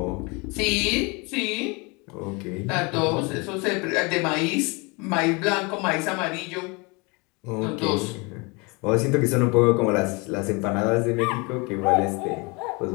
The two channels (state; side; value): quieter; right; 28.7 dB